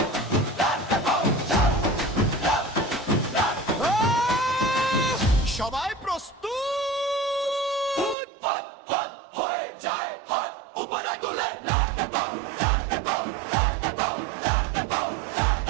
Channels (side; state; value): left; drops out; at 8.2 s